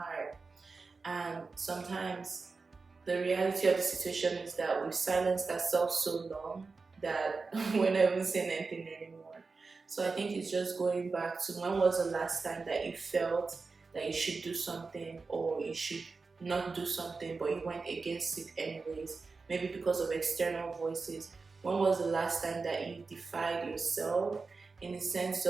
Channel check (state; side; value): quieter; left; 4.3 dB